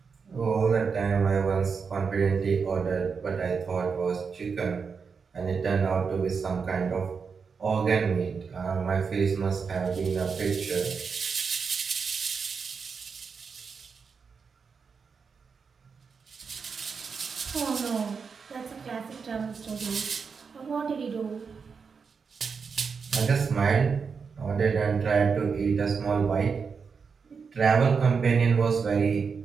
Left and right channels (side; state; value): left; quieter; 5.6 dB